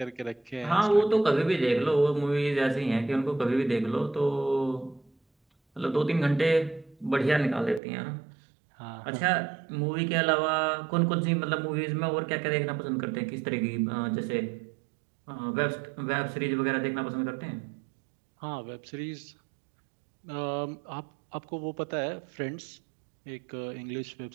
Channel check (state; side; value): drops out; left; at 7.8 s